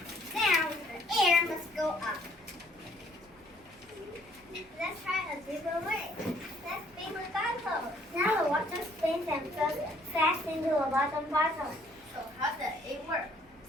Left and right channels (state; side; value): normal; both; correlation 0.62